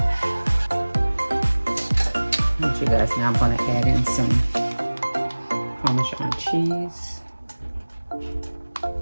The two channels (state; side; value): inverted; both; correlation -1.00